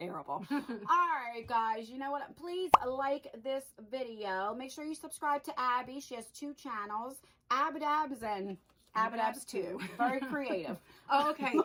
All right, guys, you know what? Please like this video. Make sure you subscribe to Abby. She has 2 channels, Abbadabbs and Abbadabbs 2. Very creative. Oh, okay.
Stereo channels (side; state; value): both; identical; correlation 1.00